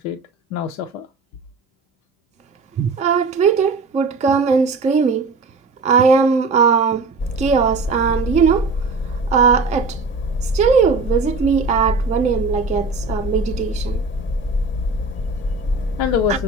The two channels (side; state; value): left; quieter; 3.7 dB